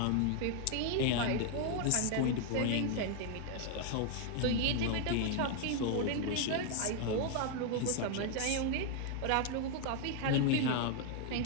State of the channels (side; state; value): both; different; correlation 0.00